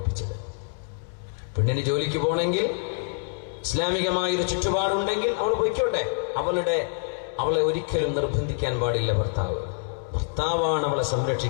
പെണ്ണിന് ജോലിക്ക് പോകണമെങ്കിൽ ഇസ്ലാമികമായൊരു ചുറ്റുപാടുണ്ടെങ്കിൽ അവൾ പൊയ്ക്കോട്ടെ. അവളെ ഒരിക്കലും നിർബന്ധിക്കാൻ പാടില്ല ഭർത്താവ്. ഭർത്താവാണ് അവളെ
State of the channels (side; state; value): right; silent; 61 dB below the other